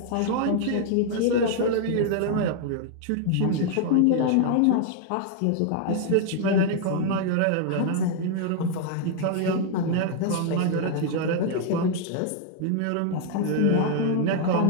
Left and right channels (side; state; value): both; different; correlation 0.00